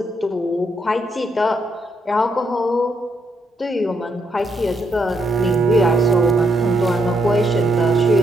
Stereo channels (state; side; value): normal; both; correlation 0.77